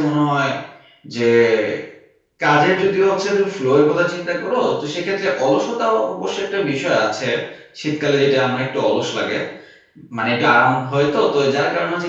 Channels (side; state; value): both; identical; correlation 1.00